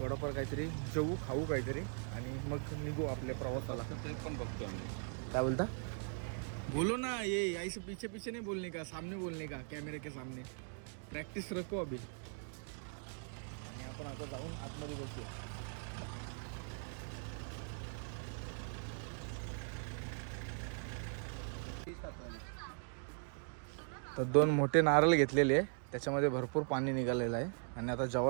काहीतरी जेवू खाऊ काहीतरी. आणि मग निघू आपल्या प्रवासाला. ते पण बघतो आम्ही. काय बोलता. बोलो ना. ये ऐसे पीछे पीछे नहीं बोलने का, सामने बोलने का, कैमरे के सामने. प्रॅक्टिस रखो अभी. आणि आपण आता जाऊन आतमध्ये बसूया. तर 2 मोठे नारळ घेतलेले आहे. त्याच्यामध्ये भरपूर पाणी निघालेलं आहे. आणि आता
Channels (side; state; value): left; silent; 51 dB below the other